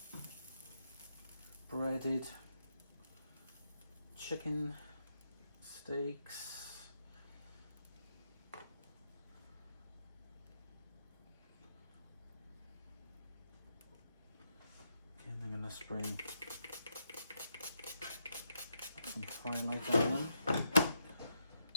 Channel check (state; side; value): inverted; both; correlation -0.81